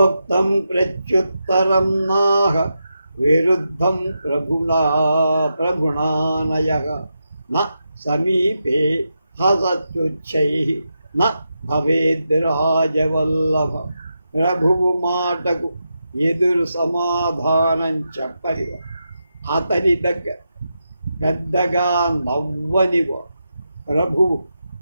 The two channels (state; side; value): inverted; both; correlation -0.87